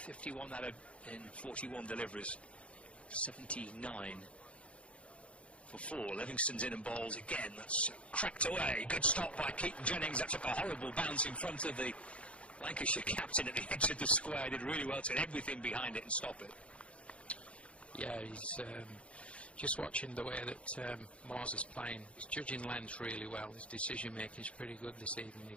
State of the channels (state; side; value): late; right; 0.061 ms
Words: out of in 41 deliveries. 79 for 4. Livingston's in and bowls again. That's cracked away. Good stop by Keaton Jennings. That took a horrible bounce in front of the Lancashire captain at the edge of the square. Did really well to get everything behind it and stop it. Yeah, he's just watching the way that Moores is playing. He's judging length really well. His decision making is pretty good this evening. He